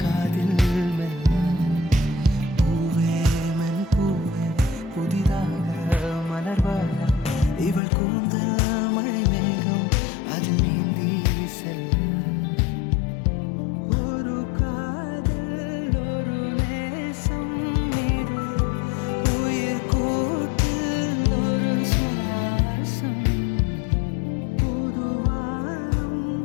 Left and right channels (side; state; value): right; drops out; at 7.8 s